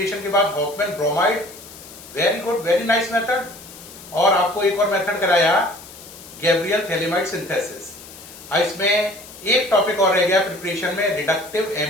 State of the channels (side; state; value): left; noise; hiss, 17 dB below the sound